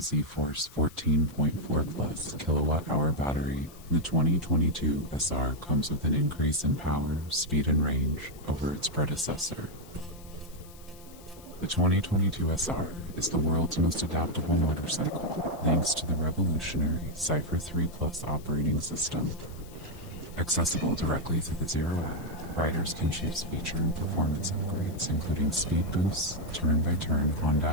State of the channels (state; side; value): noise; left; hiss, 22 dB below the sound